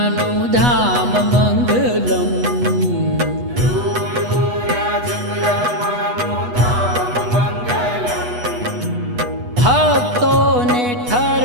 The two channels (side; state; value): left; late; 8.2 ms